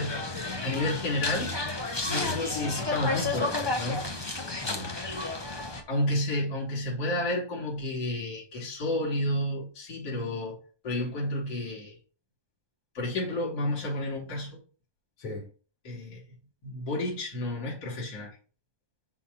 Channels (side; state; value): left; late; 1.2 ms